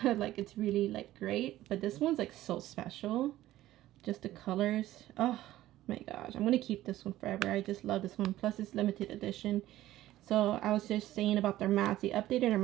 Like, it's really like great, but this one's like so special. Just the colors, oh my gosh, I'm gonna keep this one forever. I just love this one. Plus it's limited edition. So I was just saying about their mattes, they updated their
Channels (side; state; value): left; quieter; 14.8 dB